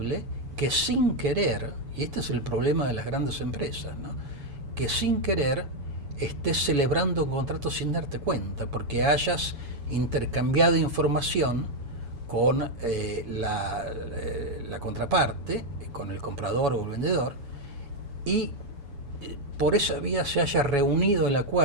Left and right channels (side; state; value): left; late; 7.0 ms